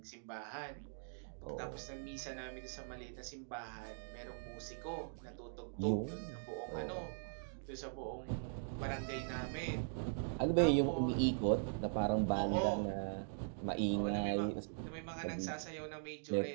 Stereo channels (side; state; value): left; silent; digital silence